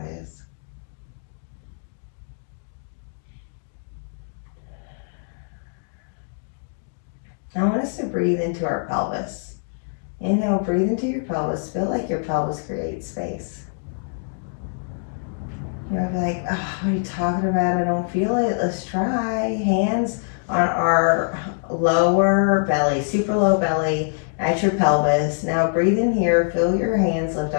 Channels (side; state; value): right; silent; digital silence